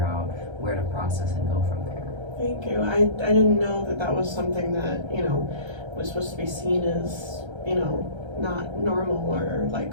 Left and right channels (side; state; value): left; late; 1.3 ms